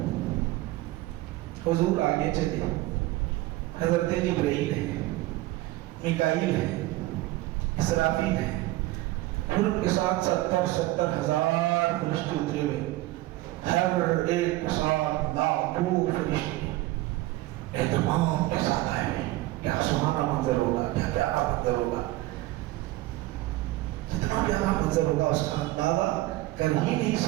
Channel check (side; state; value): left; quieter; 18.2 dB